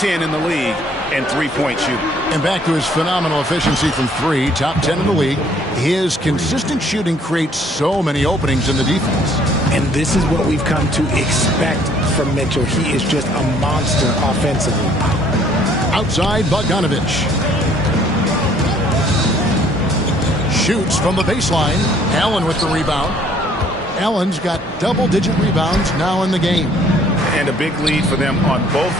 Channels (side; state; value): both; normal; correlation 0.61